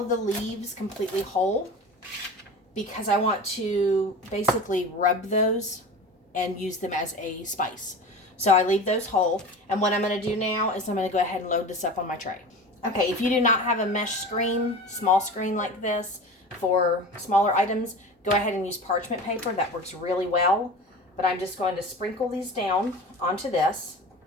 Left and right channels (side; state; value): both; normal; correlation 0.33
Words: the leaves completely whole because I want to basically rub those and use them as a spice. So I leave those whole. And what I'm going to do now is I'm going to go ahead and load this up on my tray. Okay, if you do not have a mesh screen, small screen like this for smaller items, go ahead and use parchment paper. That works really well. But I'm just going to sprinkle these down onto this